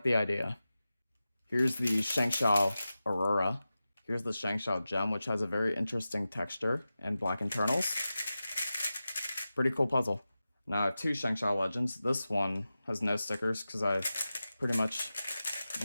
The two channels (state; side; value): inverted; both; correlation -0.94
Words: the idea. Here's the Shangshao Aurora. Here's the Shangshao Gem, which has a very interesting texture and black internals. Pretty cool puzzle. Now I have two Shangshao Legends. This one has no stickers because I pretty much